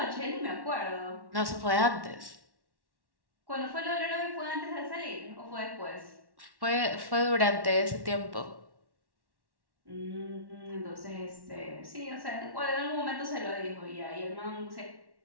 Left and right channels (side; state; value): left; late; 1.1 ms